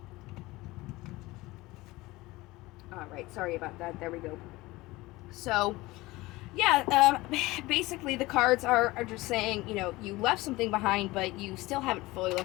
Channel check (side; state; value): right; quieter; 20.2 dB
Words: All right, sorry about that. There we go. So, yeah, basically the cards are just saying, you left something behind, but you still haven't fully